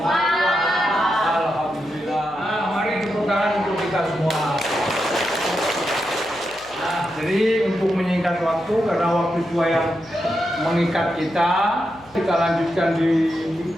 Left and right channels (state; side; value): noise; left; hum, 27 dB below the sound